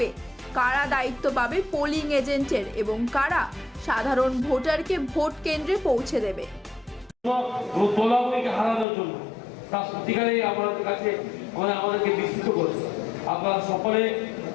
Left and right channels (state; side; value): drops out; right; at 8.8 s